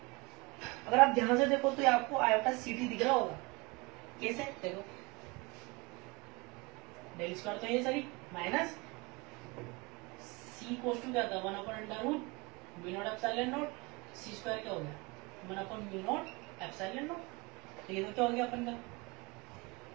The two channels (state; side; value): quieter; left; 25.6 dB